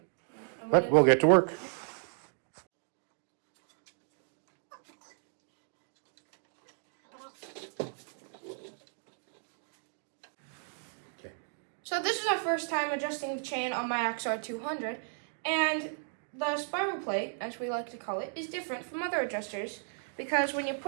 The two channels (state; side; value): silent; left; digital silence